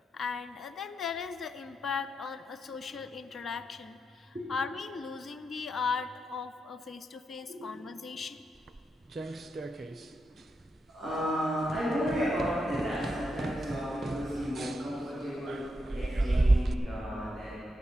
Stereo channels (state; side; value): normal; both; correlation 0.84